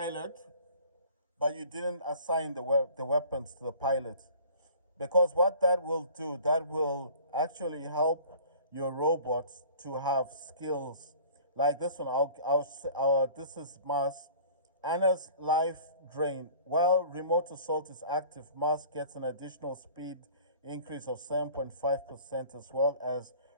but you didn't assign the weapons to the pilot. Because what that will do, that will actually help your robots to have skills like this one. This is Mars. Anna's life drain. While remote assault is active, Mars gets an additional speed increase of 7.5%, as well as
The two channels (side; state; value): both; inverted; correlation -0.47